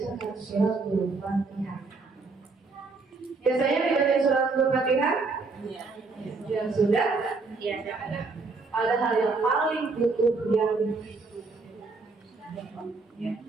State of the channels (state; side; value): quieter; left; 4.0 dB